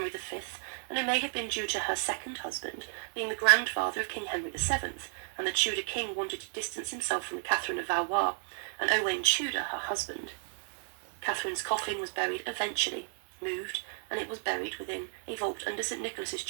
V, and it may have been due to her second husband being the grandfather of King Henry VII, and the Tudor king wanted to distance himself from Catherine of Valois, and Owain Tudor, her husband. Catherine's coffin was buried eventually, moved, and it was buried within a vault under St Nicholas's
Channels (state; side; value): silent; left; 56 dB below the other